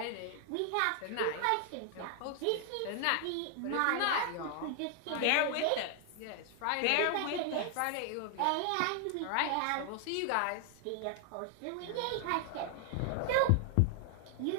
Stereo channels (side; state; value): both; different; correlation 0.00